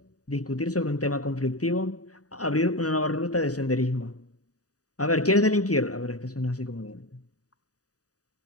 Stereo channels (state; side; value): late; right; 0.67 ms